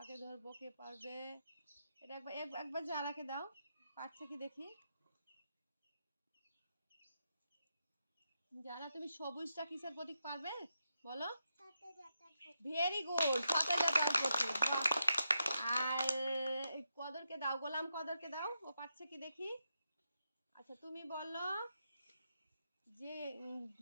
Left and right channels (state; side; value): inverted; both; correlation -0.85